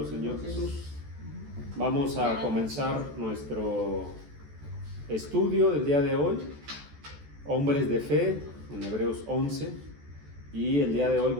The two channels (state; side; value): late; left; 14 ms